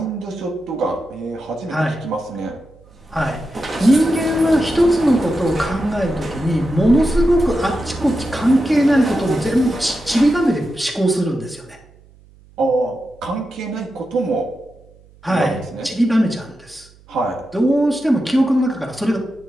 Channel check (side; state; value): right; noise; hum, 27 dB below the sound